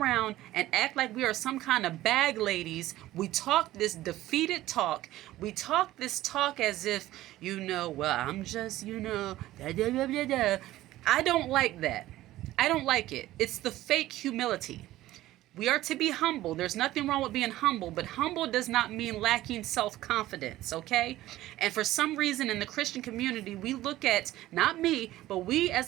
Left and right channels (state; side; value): quieter; left; 15.5 dB